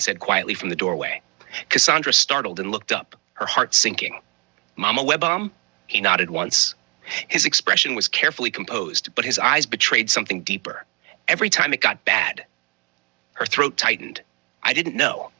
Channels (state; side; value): quieter; left; 31.9 dB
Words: quietly from the doorway. Cassandra startled and looked up, her heart sinking. Mama Webam? He nodded once. His expression was carefully composed, but his eyes betrayed something deeper. Every time it got bad. Her throat tightened. I didn't know.